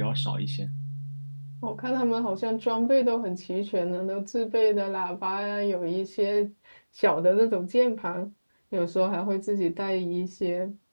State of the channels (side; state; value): both; inverted; correlation -1.00